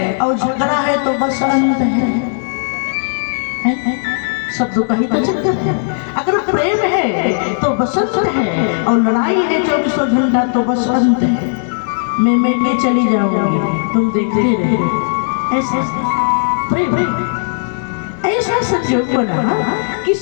और झगड़ा है तो बसंत है। शब्दों का ही तो चक्कर है। अगर प्रेम है तो बसंत है और लड़ाई है 24 घंटा तो बसंत है। मैं के चली जाऊंगी तुम देखते रहे। ऐसा प्रेम ऐसा संजोग बना कि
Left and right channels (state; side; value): silent; right; digital silence